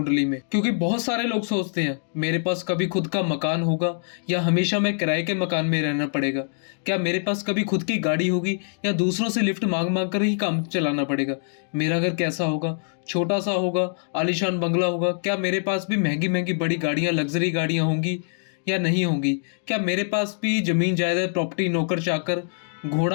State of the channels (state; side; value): silent; right; digital silence